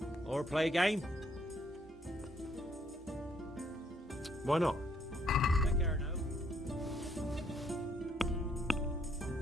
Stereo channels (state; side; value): normal; both; correlation 0.70